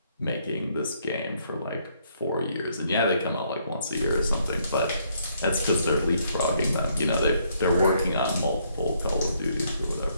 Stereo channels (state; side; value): inverted; both; correlation -0.70